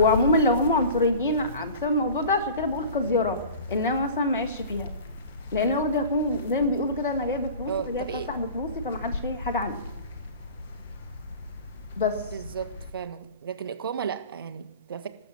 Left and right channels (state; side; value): inverted; both; correlation -0.39